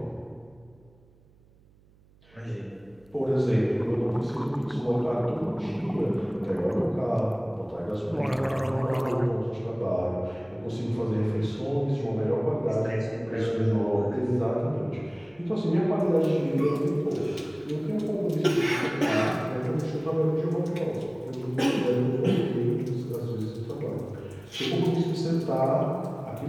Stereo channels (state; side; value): noise; right; hum, 29 dB below the sound